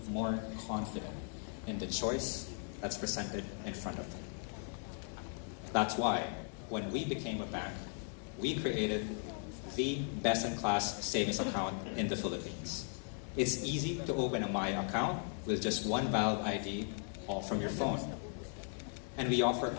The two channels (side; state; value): right; silent; 53 dB below the other